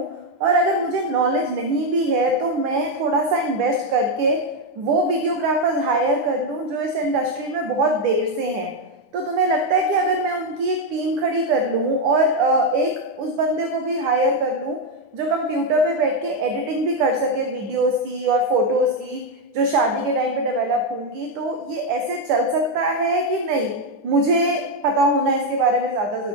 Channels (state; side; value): late; left; 9.7 ms